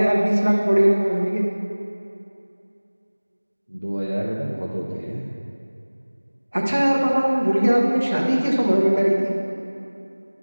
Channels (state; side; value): inverted; both; correlation -1.00